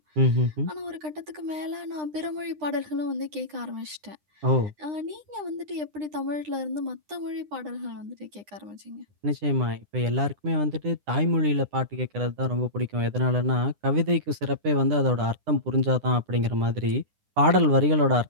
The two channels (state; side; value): late; left; 9.9 ms